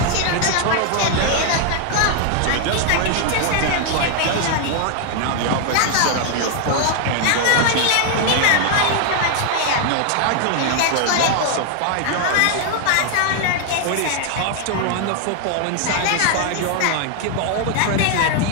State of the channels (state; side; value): different; both; correlation 0.00